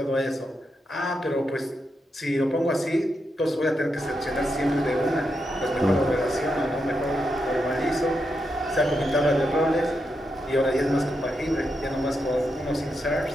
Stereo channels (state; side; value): normal; both; correlation 0.84